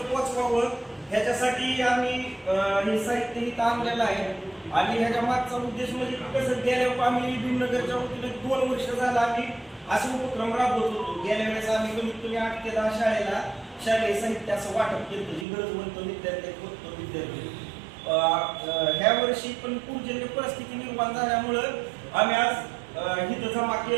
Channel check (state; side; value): drops out; left; at 15.5 s